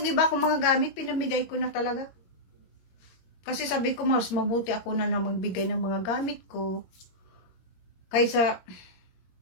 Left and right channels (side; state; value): right; late; 22 ms